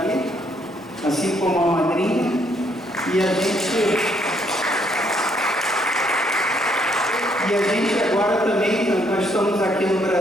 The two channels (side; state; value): both; normal; correlation 0.70